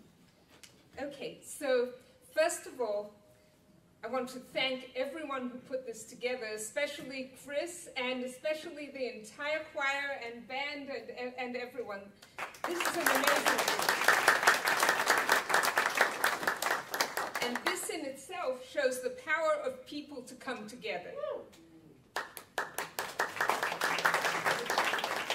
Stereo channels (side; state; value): both; identical; correlation 1.00